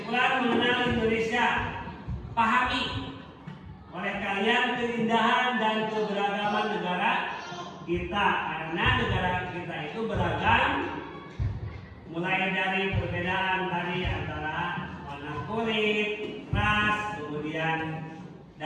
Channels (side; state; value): both; identical; correlation 1.00